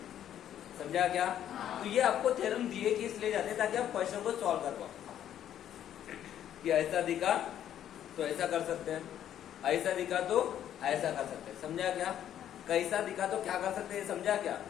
समझा क्या? तो ये आपको थ्योरम दिए कि इसलिए जाते हैं ताकि आप क्वेश्चन को सॉल्व कर पाओ। कि ऐसा दिखा तो ऐसा कर सकते हैं, ऐसा दिखा तो ऐसा कर सकते हैं। समझा क्या? कैसा दिखा तो क्या कर सकते हैं, समझा क्या?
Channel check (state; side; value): quieter; right; 10.6 dB